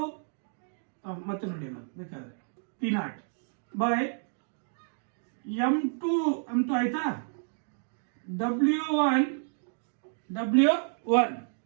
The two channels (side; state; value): left; silent; digital silence